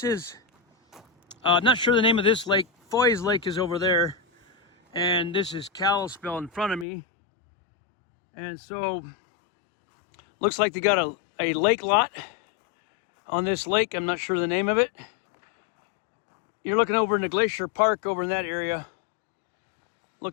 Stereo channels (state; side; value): drops out; right; at 6.9 s